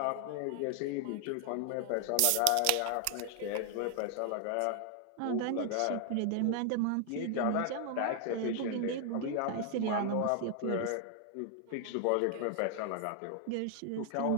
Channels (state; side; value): different; both; correlation 0.00